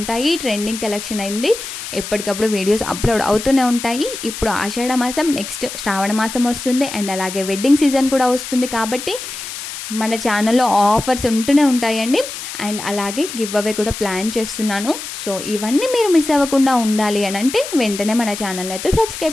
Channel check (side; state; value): left; noise; hiss, 9 dB below the sound